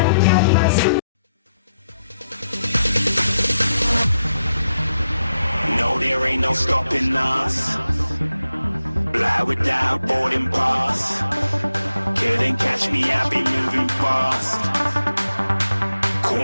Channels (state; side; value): inverted; both; correlation -0.84